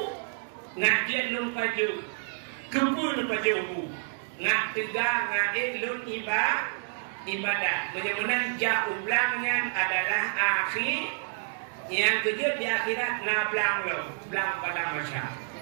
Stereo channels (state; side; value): silent; left; digital silence